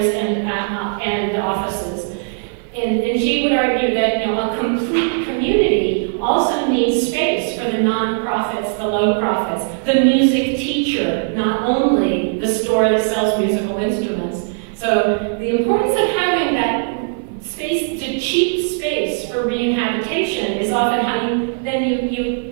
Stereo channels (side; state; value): left; silent; 57 dB below the other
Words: and offices. And she would argue that a complete community also needs space for the nonprofits, the low profits, the music teacher, not only the store that sells musical instruments. So the importance of having that space, to cheap space for rehabilitation, is often how you